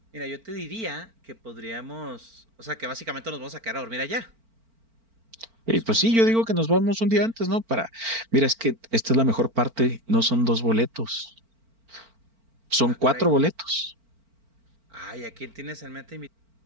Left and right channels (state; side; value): late; left; 4.4 ms